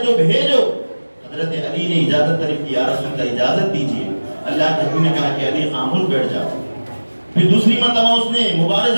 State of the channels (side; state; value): both; inverted; correlation -1.00